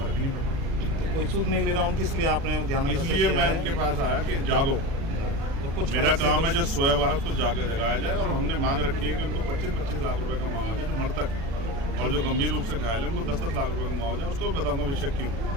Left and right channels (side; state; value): left; late; 36 ms